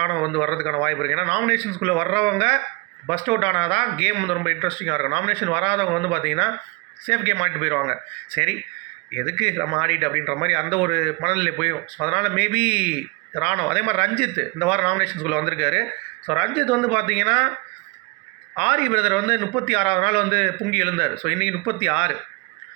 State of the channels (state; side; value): quieter; left; 28.0 dB